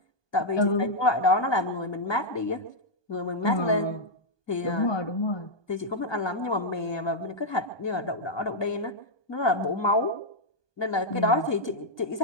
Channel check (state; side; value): late; right; 1.2 ms